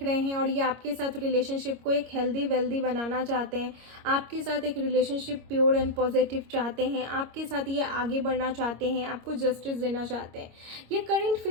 रहे हैं, और ये आपके साथ रिलेशनशिप को एक हेल्दी वेल्दी बनाना चाहते हैं, आपके साथ एक रिलेशनशिप प्योर एंड पॉजिटिव चाहते हैं, आपके साथ ये आगे बढ़ना चाहते हैं, आपको जस्टिस देना चाहते हैं। ये करेंट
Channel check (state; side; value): late; left; 25 ms